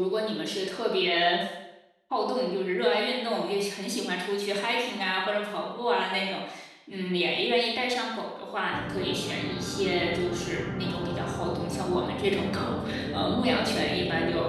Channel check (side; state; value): both; identical; correlation 1.00